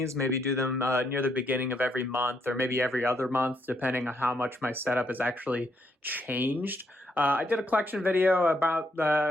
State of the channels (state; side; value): normal; both; correlation 0.75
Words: maybe do them near the beginning of every month or maybe every other month, depending on how much my setup has actually changed. I did a collection video about,